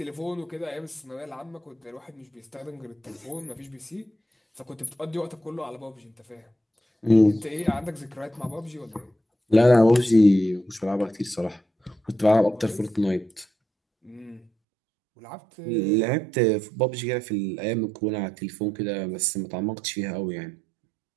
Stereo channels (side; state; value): left; drops out; at 14.5 s